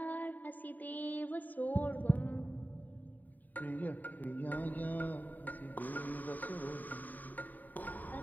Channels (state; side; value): late; right; 0.085 ms